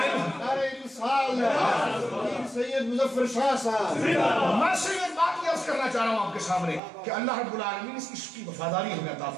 سید مظفر شاہ صاحب, میں سے یہ بات یہ عرض کرنا چاہ رہا ہوں آپ کے سامنے کہ اللہ رب العالمین اس عشق کی وفاداری ہمیں عطا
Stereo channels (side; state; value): left; drops out; at 6.8 s